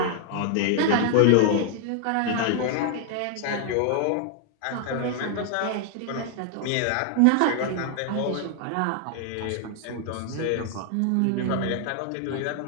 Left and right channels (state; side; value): different; both; correlation 0.00